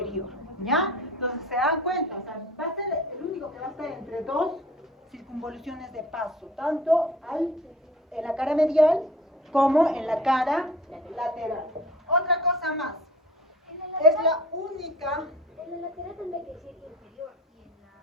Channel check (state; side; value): normal; both; correlation 0.45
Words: ¿Ya? Entonces, se dan cuenta. O sea, va a ser el único que va a estar entre dos circunvoluciones de paso, tanto en la cara medial como en la cara lateral. Otra cosa más, es la única... En la lateral tendría que decir inferior y en la medial